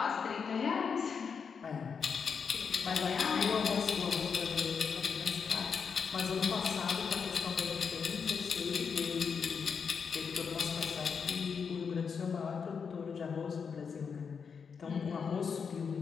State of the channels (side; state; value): right; quieter; 6.1 dB